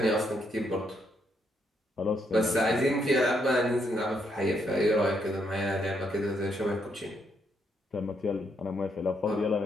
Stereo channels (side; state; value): both; normal; correlation 0.75